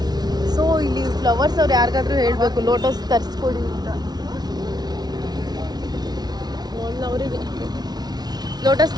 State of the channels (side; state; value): left; late; 0.19 ms